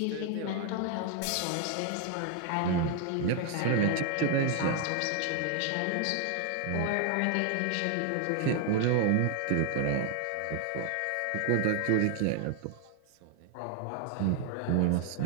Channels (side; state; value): both; different; correlation 0.00